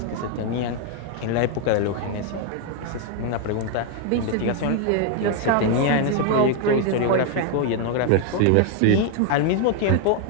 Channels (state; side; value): different; both; correlation 0.01